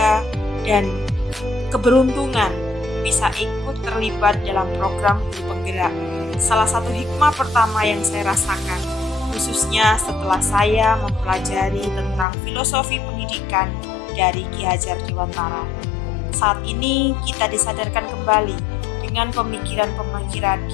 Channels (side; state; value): right; drops out; at 12.2 s